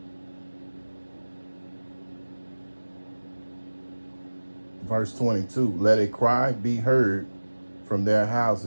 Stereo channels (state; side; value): inverted; both; correlation -1.00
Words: verse 22. Let a cry be heard from their